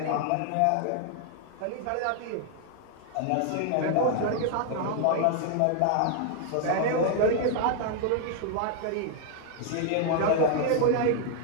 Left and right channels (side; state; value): both; different; correlation 0.00